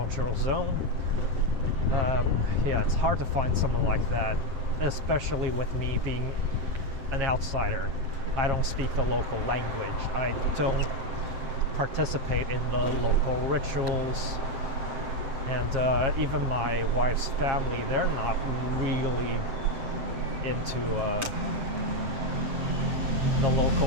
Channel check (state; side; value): late; left; 7.3 ms